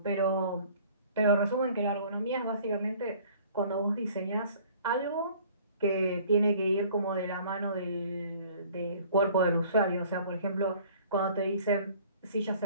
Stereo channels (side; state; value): both; inverted; correlation -0.53